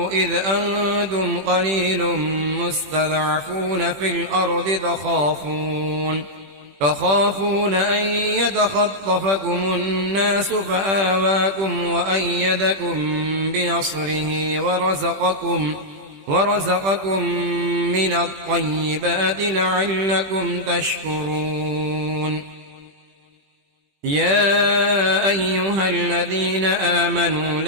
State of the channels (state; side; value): late; left; 21 ms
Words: إذ أنتم قليل مستضعفون في الأرض تخافون أن يتخطفكم الناس فآواكم وأيدكم بنصره ورزقكم من الطيبات لعلكم تشكرون. يا أيها الذين آمنوا